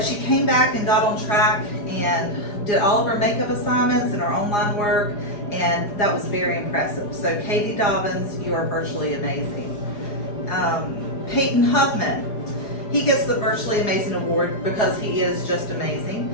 she came back and got on track and did all of her makeup assignments and her online work, and that was very impressive. So Katie Dobbins, you are virtually amazing. Peyton Huffman. He gets the Virtually Amazing Award because he is just amazing.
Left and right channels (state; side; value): late; right; 4.9 ms